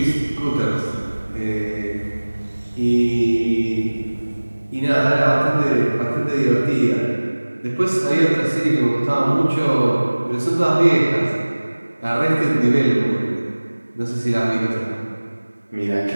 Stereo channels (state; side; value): inverted; both; correlation -1.00